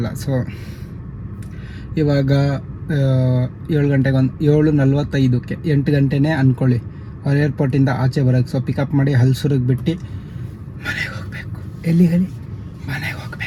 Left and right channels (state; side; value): identical; both; correlation 1.00